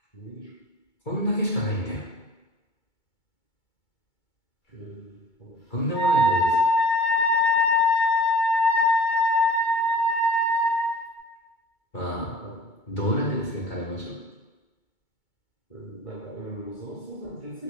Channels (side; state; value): right; late; 2.2 ms